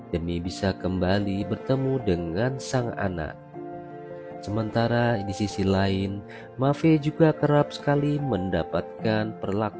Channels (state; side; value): identical; both; correlation 1.00